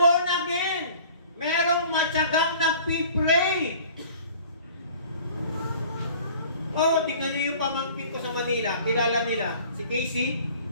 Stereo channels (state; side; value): inverted; both; correlation -0.48